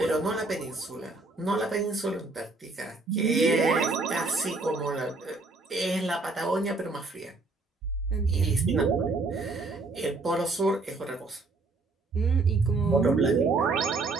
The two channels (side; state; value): left; quieter; 3.5 dB